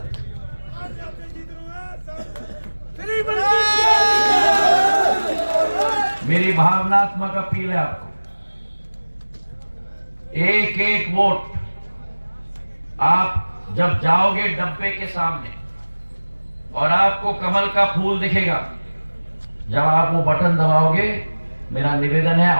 मेरी भावनात्मक अपील है आपको, एक एक वोट आप जब जाओगे डब्बे के सामने और आपको कमल का फूल दिखेगा, जब आप वो बटन दबाओगे, मेरा निवेदन है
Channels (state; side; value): inverted; both; correlation -1.00